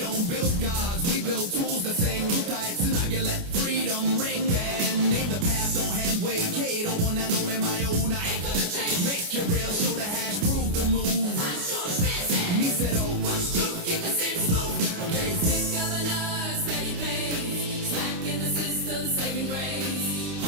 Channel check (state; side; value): late; left; 29 ms